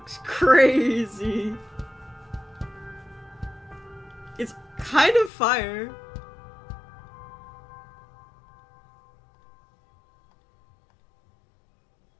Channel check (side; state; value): right; drops out; at 5.3 s